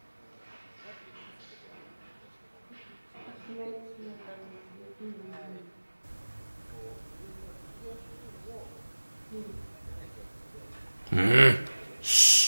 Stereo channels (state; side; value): inverted; both; correlation -1.00